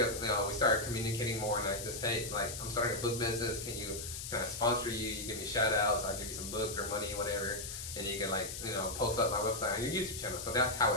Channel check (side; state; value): left; noise; hiss, 7 dB below the sound